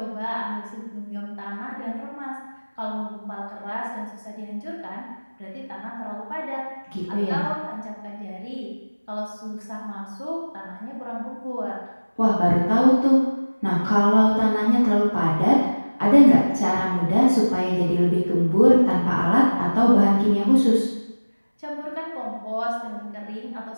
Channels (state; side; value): inverted; both; correlation -1.00